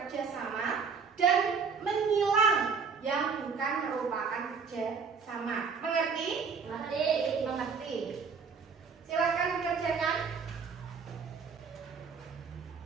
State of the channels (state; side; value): quieter; left; 5.6 dB